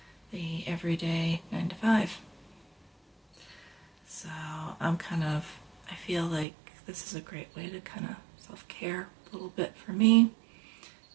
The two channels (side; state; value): left; drops out; at 6.5 s